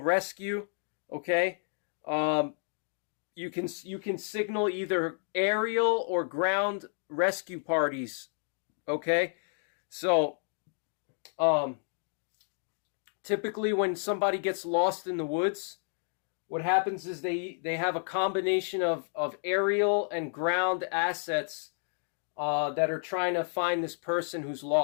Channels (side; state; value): right; silent; 57 dB below the other